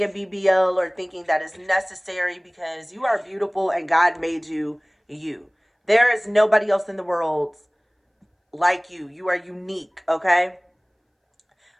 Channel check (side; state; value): both; identical; correlation 1.00